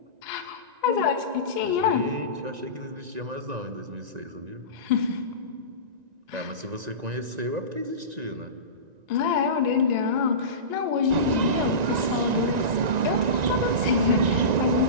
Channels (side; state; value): left; late; 1.9 ms